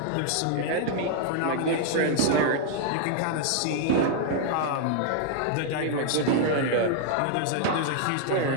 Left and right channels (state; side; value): different; both; correlation 0.00